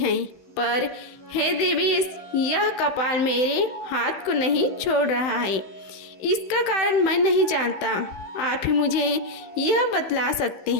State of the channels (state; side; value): late; right; 16 ms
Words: पर हे देवेश, यह कपाल मेरे हाथ को नहीं छोड़ रहा है। इसका कारण मैं नहीं जानता, आप ही मुझे यह बतला सकते